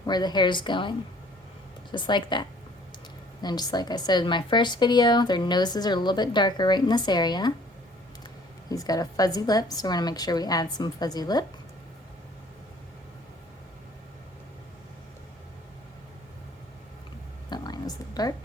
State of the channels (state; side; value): normal; both; correlation 0.55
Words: where the hair is going. Just like that. And just like I said in my first video, their noses are a little bit darker right in this area. He's got a fuzzy lip, so we're going to make sure we add some fuzzy lip. That line was a little dark.